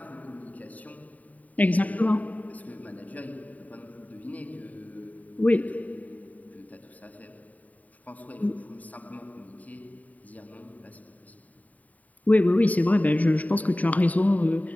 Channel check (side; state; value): right; late; 0.072 ms